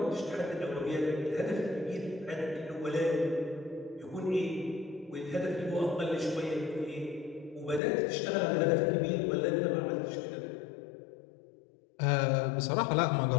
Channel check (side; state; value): right; drops out; at 7.8 s